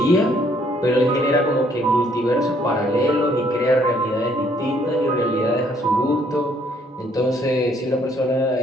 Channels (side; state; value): both; normal; correlation 0.66